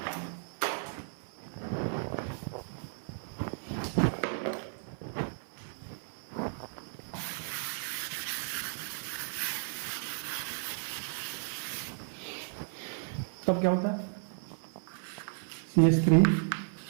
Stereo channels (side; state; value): left; silent; 55 dB below the other